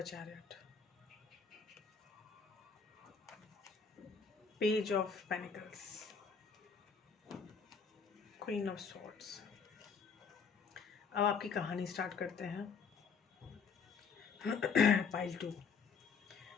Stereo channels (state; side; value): quieter; right; 5.6 dB